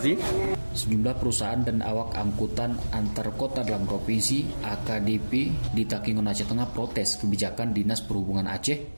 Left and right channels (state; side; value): inverted; both; correlation -1.00